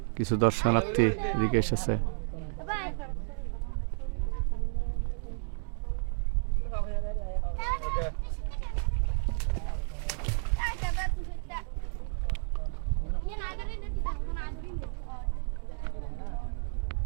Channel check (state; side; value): silent; left; digital silence